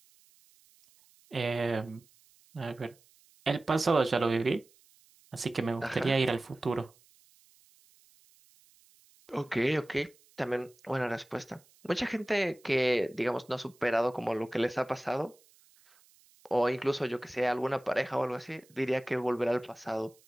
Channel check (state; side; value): noise; right; hiss, 30 dB below the sound